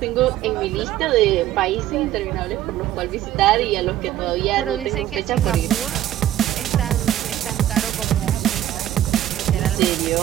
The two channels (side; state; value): left; quieter; 12.8 dB